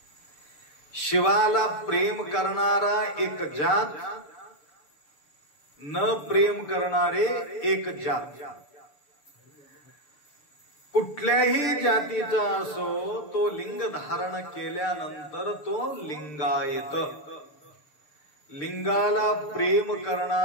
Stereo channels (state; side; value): late; right; 6.7 ms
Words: शिवाला प्रेम करणारा एक जात, न प्रेम करणारे एक जात. कुठल्याही जातीचा असो तो लिंग धारण केल्यानंतर तो लिंगायत. लिंगाला प्रेम